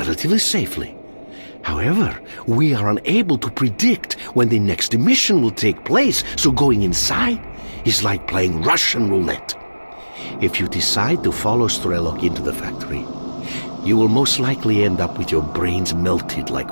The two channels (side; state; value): both; inverted; correlation -1.00